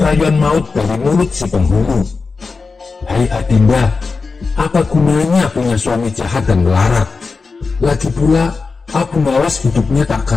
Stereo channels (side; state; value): right; quieter; 4.4 dB